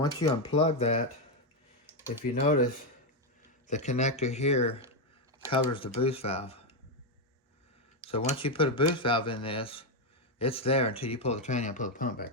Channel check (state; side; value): normal; both; correlation 0.05